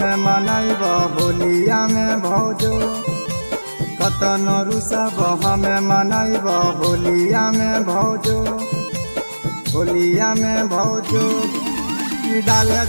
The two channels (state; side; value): inverted; both; correlation -1.00